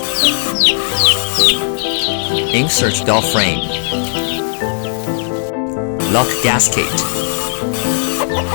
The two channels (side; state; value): right; silent; digital silence